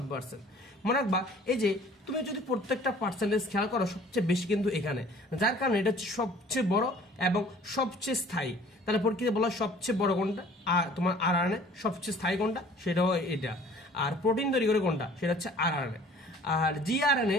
মনে রাখবা এই যে তুমি যদি প্রত্যেকটা পার্সেন্টেজ খেয়াল করো, সবচেয়ে বেশি কিন্তু এখানে, যার কারণে এটা হচ্ছে সবচেয়ে বড় এবং সবচেয়ে স্থায়ী। তাহলে পরীক্ষাতে বলা সবচেয়ে বড় কোনটা, আর তোমার আরআরএনএ। সবচেয়ে স্থায়ী কোনটা? সেটাও এটা। আর প্রোটিন তৈরি করে কোনটা? সেটা হচ্ছে আরআরএনএ। আর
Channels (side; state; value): both; normal; correlation 0.51